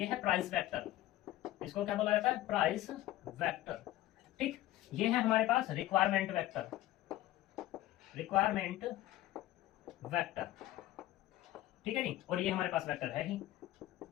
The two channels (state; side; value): quieter; right; 15.2 dB